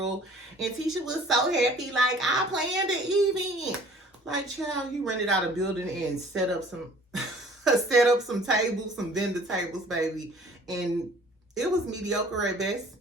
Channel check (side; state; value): both; normal; correlation 0.52